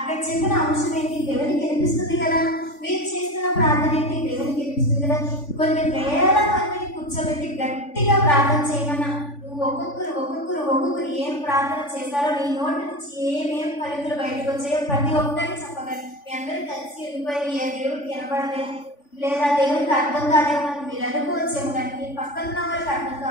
చెప్పిన అంశం ఏంటి? దేవునికి అనిపిస్తుంది కదా. మీరు చేస్తున్న ప్రార్థన ఏంటి? దేవునికి అనిపిస్తుంది కదా. కొన్ని వేల మందిని కూర్చోబెట్టి గట్టిగా ప్రార్థన చేయమన్నా నువ్వు ఒక్కొక్కరు ఏం ప్రార్థన చేశారో నీ నోటి నుంచి ఏమేం పలుకులు బయటకు వచ్చాయో ప్రతి ఒక్కరికి చెప్పగలరు. మీ అందరూ కలిసి వెళ్ళిపోయి ఏ దేవుడికి వినపడలేదు లేదా దేవుడికి అర్థం కాదేమో అని మీరు అనుకోవచ్చేమో, కానీ మీ పక్కన ఉన్న వాళ్ళకి అర్థం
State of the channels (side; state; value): right; late; 3.5 ms